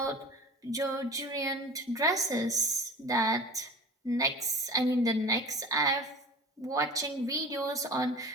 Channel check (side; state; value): both; normal; correlation 0.37